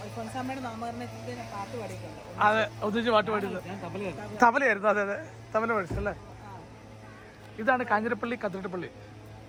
അതെ, ഒന്നിച്ച് പാട്ട് പാടിയത് തബലയായിരുന്നു. അതെ അതെ, തബല പഠിച്ചല്ലേ. ഇതാണ് കാഞ്ഞിരപ്പള്ളി കത്തീഡ്രൽ പള്ളി.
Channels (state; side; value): identical; both; correlation 1.00